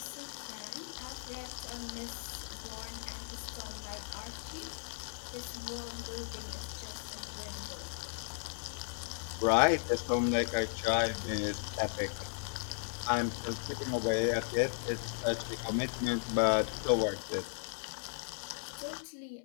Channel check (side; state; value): right; silent; 54 dB below the other